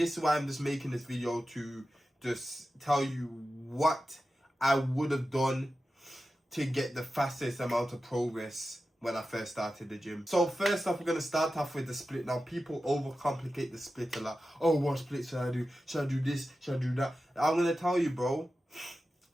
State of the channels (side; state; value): both; normal; correlation 0.93